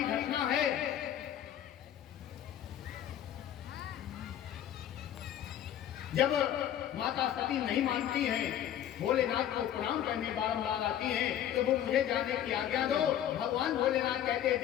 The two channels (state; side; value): quieter; right; 10.9 dB